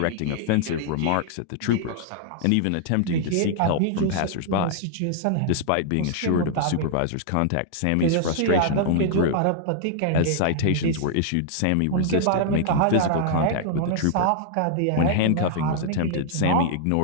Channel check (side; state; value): both; different; correlation -0.01